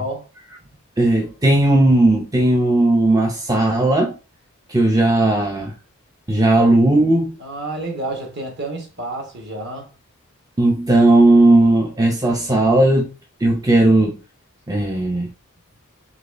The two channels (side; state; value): both; normal; correlation 0.84